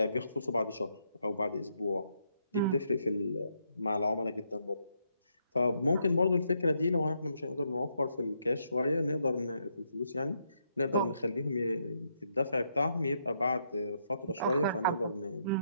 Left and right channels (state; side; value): inverted; both; correlation -0.77